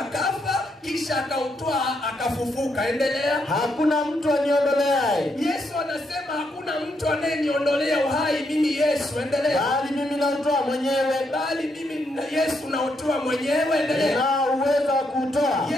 kisha akautoa akafufuka. Endelea. Hakuna mtu aniondoleaye. Yesu anasema hakuna mtu anayeniondolea uhai mimi Yesu. Endelea. Bali mimi nautoa mwenyewe. Bali mimi Yesu nautoa mwenyewe. Endelea. Nina uwezo wa kuutoa.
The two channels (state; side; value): normal; both; correlation 0.78